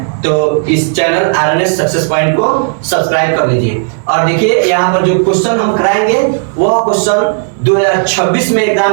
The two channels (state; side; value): silent; left; digital silence